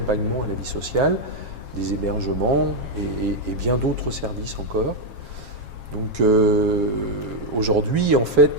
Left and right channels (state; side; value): late; left; 7.4 ms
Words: à la vie sociale, des hébergements et bien d'autres services encore. Donc aujourd'hui, en